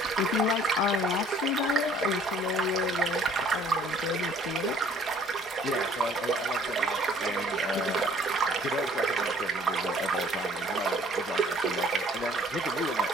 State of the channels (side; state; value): both; normal; correlation 0.57